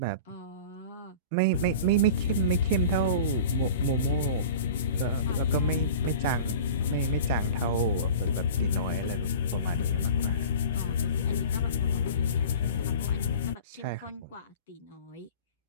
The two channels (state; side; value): inverted; both; correlation -0.38